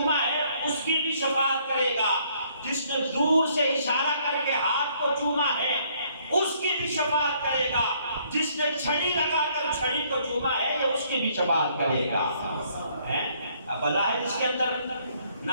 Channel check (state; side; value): inverted; both; correlation -0.65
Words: ہے اس کی بھی شفاعت کرے گا. جس نے دور سے اشارہ کر کے ہاتھ کو چوما ہے اس کی بھی شفاعت کرے گا. جس نے چھڑی لگا کر چھڑی کو چوما ہے یہ اس کی بھی شفاعت کرے گا. اب بظاہر اس کے اندر نہ